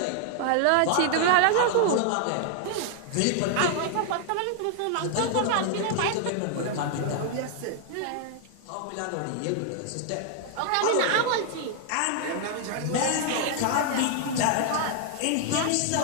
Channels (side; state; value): both; different; correlation 0.00